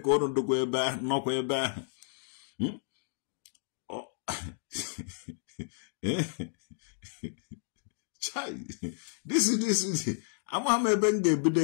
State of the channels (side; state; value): right; silent; digital silence